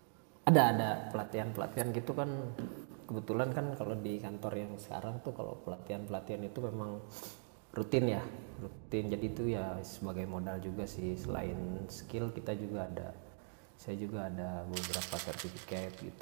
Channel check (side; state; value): left; silent; digital silence